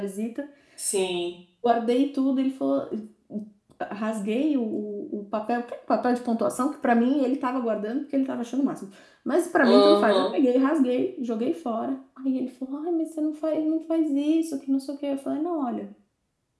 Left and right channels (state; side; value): identical; both; correlation 1.00